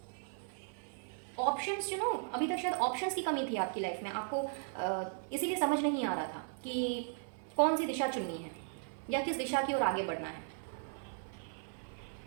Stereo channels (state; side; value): silent; left; 53 dB below the other